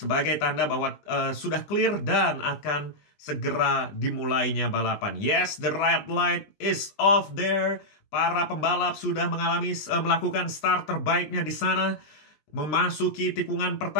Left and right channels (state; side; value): late; right; 20 ms